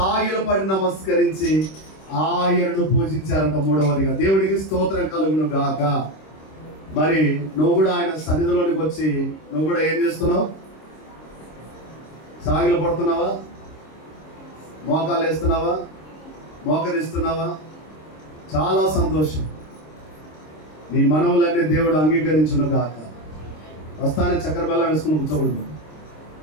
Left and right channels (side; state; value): right; late; 26 ms